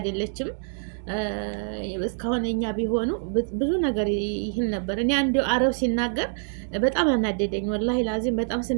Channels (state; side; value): silent; left; digital silence